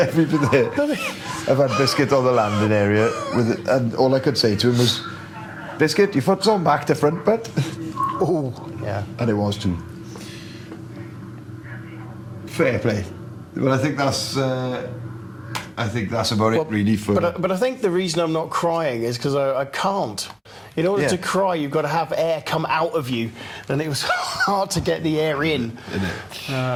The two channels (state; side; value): identical; both; correlation 1.00